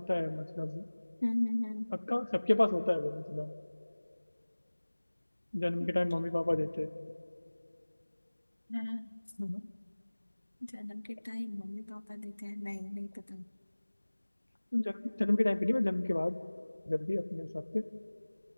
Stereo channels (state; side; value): inverted; both; correlation -1.00